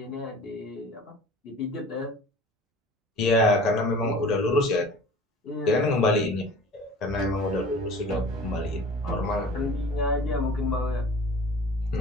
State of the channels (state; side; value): normal; both; correlation 0.43